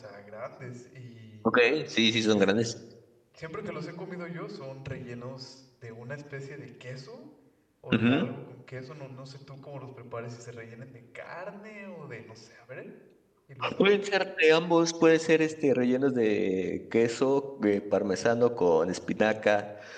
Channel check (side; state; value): both; identical; correlation 1.00